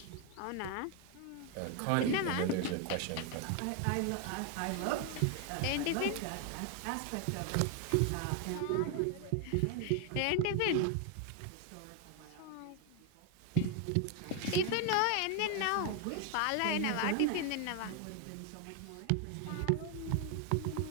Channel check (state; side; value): different; both; correlation 0.01